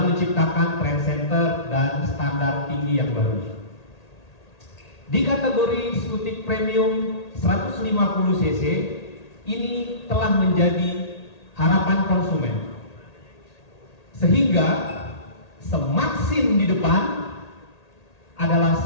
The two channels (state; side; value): late; right; 1.8 ms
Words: menciptakan trend center dan standar tinggi yang baru. Di kategori skutik premium 150 cc ini telah menjadi harapan konsumen, sehingga semaksim di depan adalah